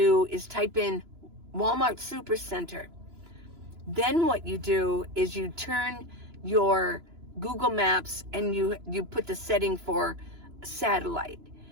is type in Walmart Supercenter. Then what you do is you turn your Google Maps and you put the setting for satellite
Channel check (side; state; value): left; late; 3.0 ms